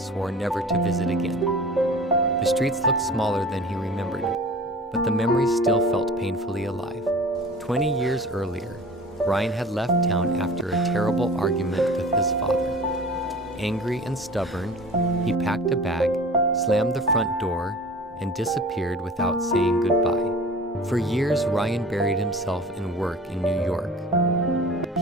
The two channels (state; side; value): normal; both; correlation 0.41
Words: swore never to visit again. The streets looked smaller than he remembered, but the memories still felt painfully alive. 20 years earlier, Ryan had left town after a terrible argument with his father. Angry and stubborn, he packed a bag, slammed the front door, and disappeared without saying goodbye. For years, Ryan buried himself in work in New York.